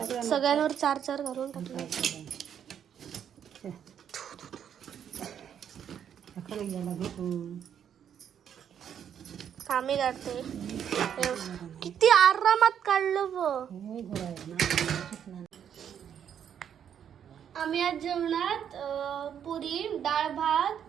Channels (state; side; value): quieter; left; 8.8 dB